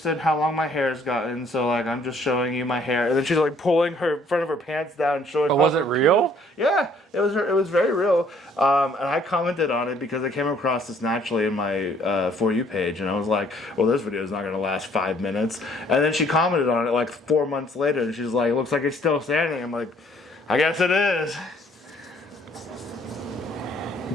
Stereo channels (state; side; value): normal; both; correlation 0.62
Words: in how long my hair's gotten, so like I'm just showing you my hair. And then she's like pulling her front of her pants down and showing... But was it real? Yeah, it was very real. And I commented on it because I came across this naturally in my For You page, and I was like, well, this video is not going to last 5 minutes. And then she commented on it like 4 months later, and she's like, it looks like it's still standing. I'm like, I guess it is.